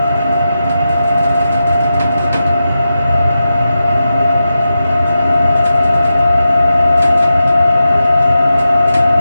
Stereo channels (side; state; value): both; inverted; correlation -0.91